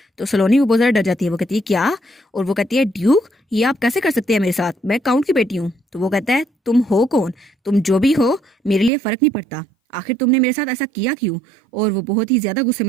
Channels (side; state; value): left; drops out; at 8.9 s